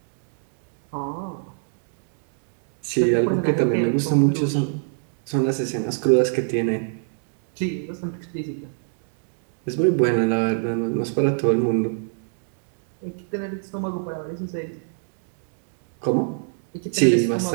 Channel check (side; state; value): left; silent; digital silence